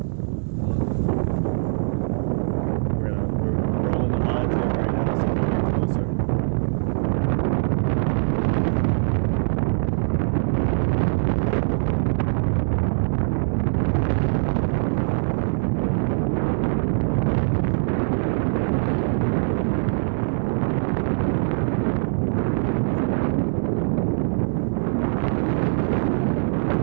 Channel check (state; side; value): silent; left; digital silence